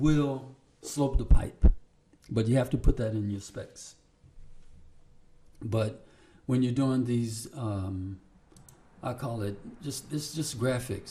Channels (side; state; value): both; identical; correlation 1.00